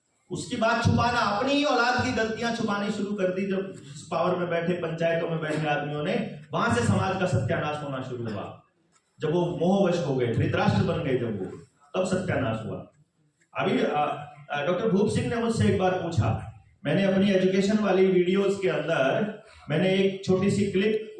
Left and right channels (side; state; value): both; identical; correlation 1.00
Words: उसकी बात छुपाना, अपनी ही औलाद की गलतियां छुपानी शुरू कर दी जब पावर में बैठे, पंचायतों में बैठे आदमियों ने, वहां से समाज का सत्यानाश होना शुरू हुआ। जब वो मोहवश हो गए, धृतराष्ट्र बन गए, जब वो, तब सत्यानाश हुआ। अभी डॉक्टर भूप सिंह ने मुझसे एक बार पूछा, मैंने अपनी एजुकेशन वाली वीडियोस के अंदर मैंने एक छोटी सी क्लिप